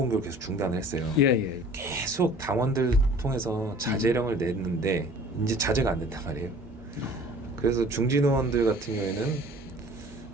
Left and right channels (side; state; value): both; normal; correlation 0.48